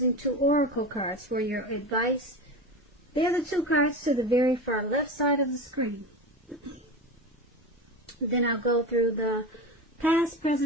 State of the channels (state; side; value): normal; both; correlation 0.26